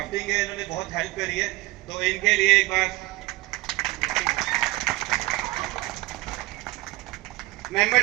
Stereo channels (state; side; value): quieter; left; 20.5 dB